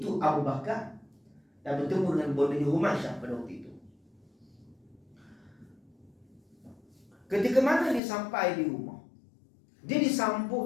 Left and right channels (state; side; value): drops out; right; at 8.0 s